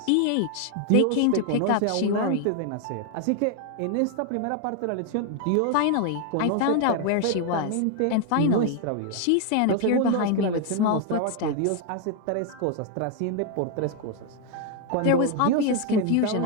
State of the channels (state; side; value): different; both; correlation 0.01